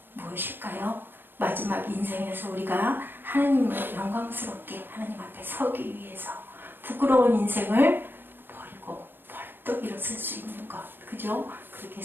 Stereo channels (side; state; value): left; late; 0.099 ms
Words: 무엇일까요? 마지막 인생에서 우리가 하나님을 영광스럽게 하나님 앞에 서기 위해서 부끄러운 인생을 버리고 벌떡 일어설 수 있는 것, 그죠? 그렇게